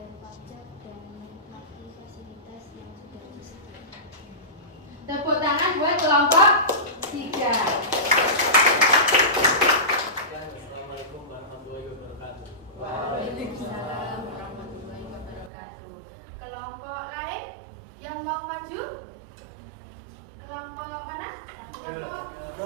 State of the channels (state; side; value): drops out; left; at 15.5 s